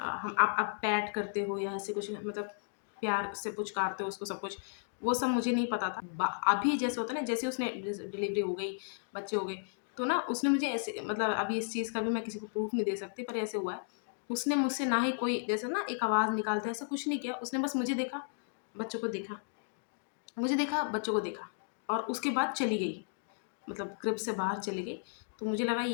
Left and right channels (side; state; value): right; silent; digital silence